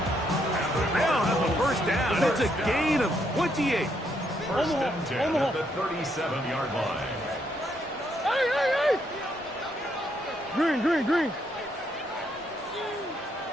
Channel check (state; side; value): normal; both; correlation 0.75